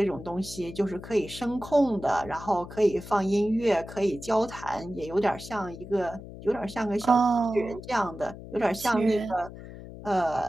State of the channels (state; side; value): noise; left; hum, 14 dB below the sound